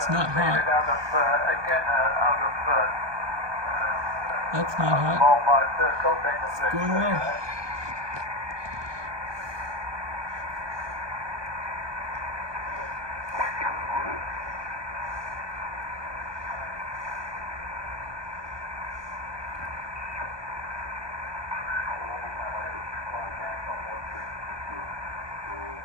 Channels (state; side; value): late; left; 1.2 ms